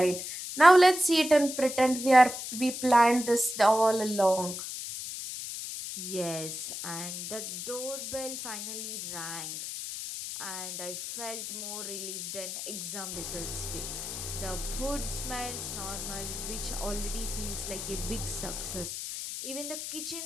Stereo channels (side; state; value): left; noise; hiss, 6 dB below the sound